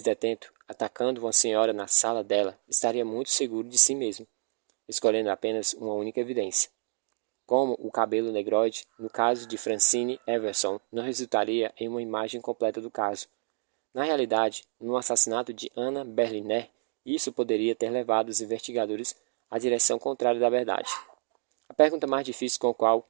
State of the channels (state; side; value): silent; left; digital silence